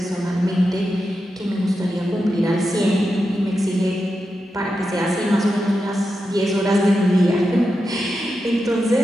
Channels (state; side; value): normal; both; correlation 0.88